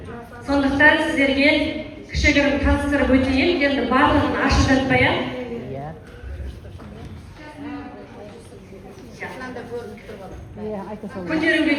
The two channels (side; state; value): both; identical; correlation 1.00